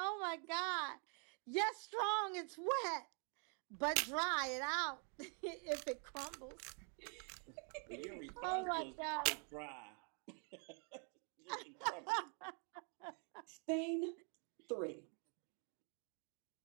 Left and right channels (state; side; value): quieter; left; 39.9 dB